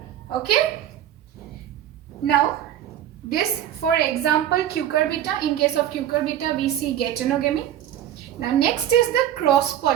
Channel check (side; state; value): left; quieter; 11.3 dB